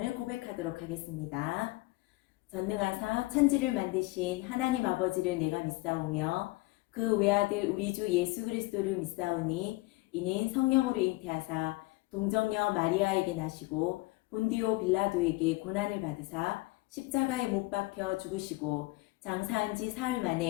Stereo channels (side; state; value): right; quieter; 22.2 dB